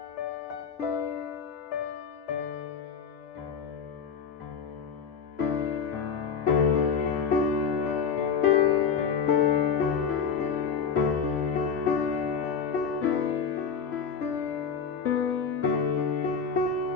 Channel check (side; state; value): right; quieter; 6.3 dB